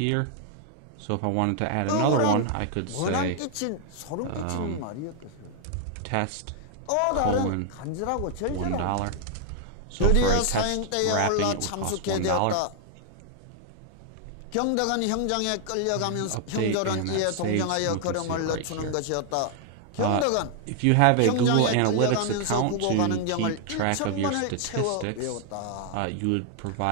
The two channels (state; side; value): different; both; correlation 0.00